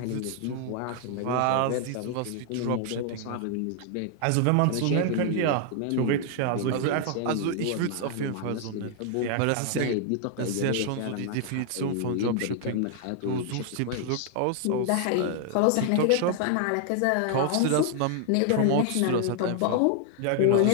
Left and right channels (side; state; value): both; different; correlation 0.00